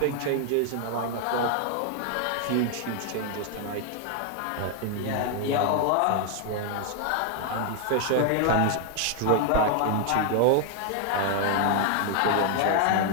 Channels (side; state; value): both; different; correlation 0.00